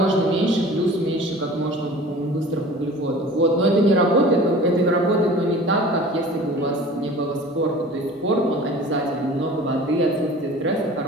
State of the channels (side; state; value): both; normal; correlation 0.42